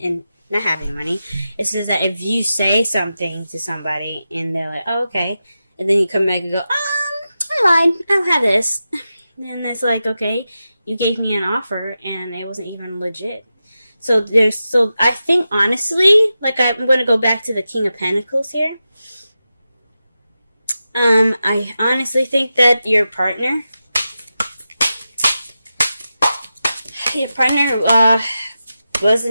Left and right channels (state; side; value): inverted; both; correlation -0.91